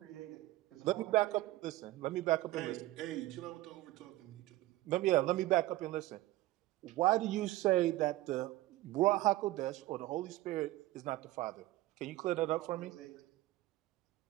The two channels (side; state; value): left; quieter; 17.3 dB